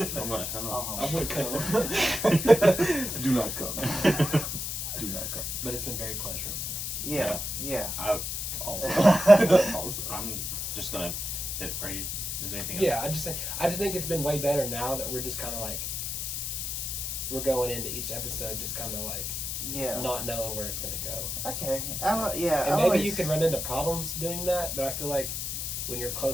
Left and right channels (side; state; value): left; noise; hiss, 3 dB below the sound